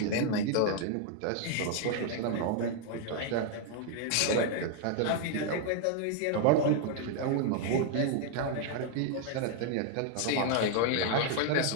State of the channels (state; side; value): different; both; correlation 0.00